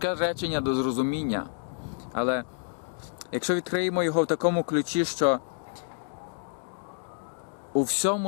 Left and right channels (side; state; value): right; silent; digital silence